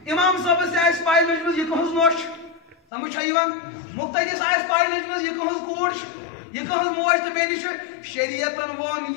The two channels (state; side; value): drops out; right; at 2.8 s